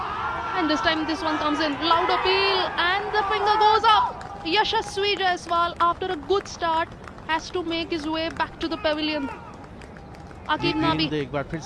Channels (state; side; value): identical; both; correlation 1.00